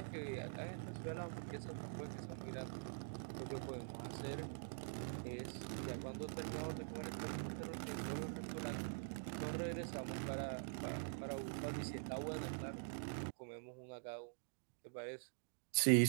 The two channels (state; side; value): silent; left; digital silence